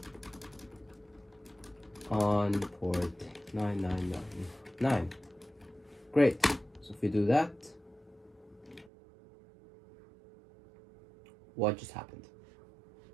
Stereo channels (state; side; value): drops out; left; at 8.9 s